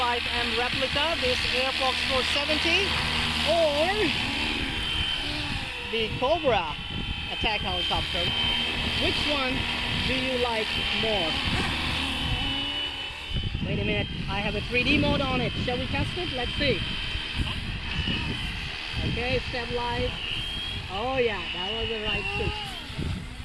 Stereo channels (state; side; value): identical; both; correlation 1.00